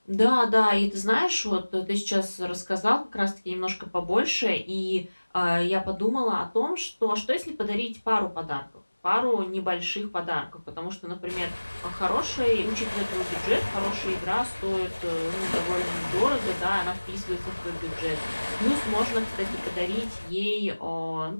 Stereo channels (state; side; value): inverted; both; correlation -1.00